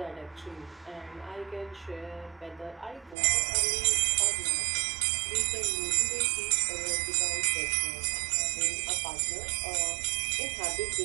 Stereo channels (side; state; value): left; drops out; at 3.2 s